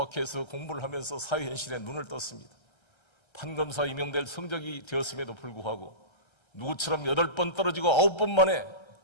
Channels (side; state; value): right; late; 1.3 ms